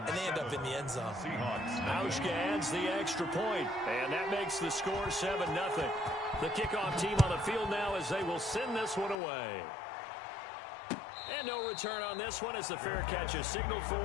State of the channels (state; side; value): drops out; right; at 9.2 s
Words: they end up in the end zone. Hauschka adds the extra point, and that makes the score 7-0. The kickoff team on the field now as they will send this one away. And no return on this one as the fair catch is signaled